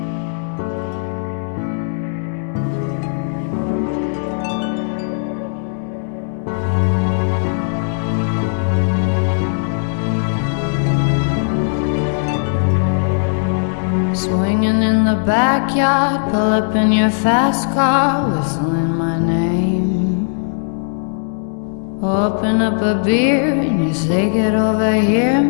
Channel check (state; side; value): silent; right; digital silence